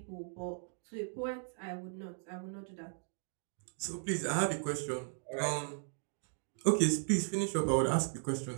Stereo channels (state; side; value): silent; left; digital silence